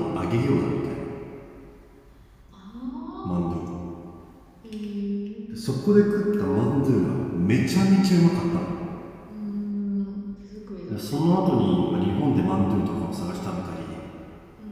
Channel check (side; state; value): both; identical; correlation 1.00